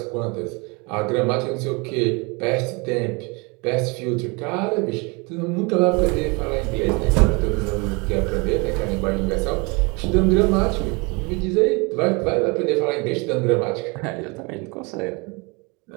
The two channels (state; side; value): quieter; left; 29.0 dB